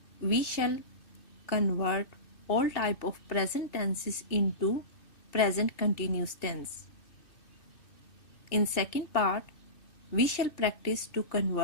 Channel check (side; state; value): right; late; 2.6 ms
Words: we shall convert all type of present tenses into present continuous tense. In second part, we shall practice to